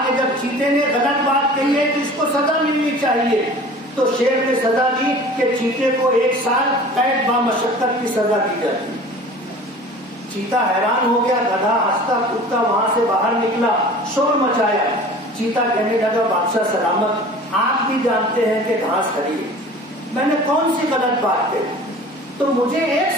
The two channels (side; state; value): both; normal; correlation 0.43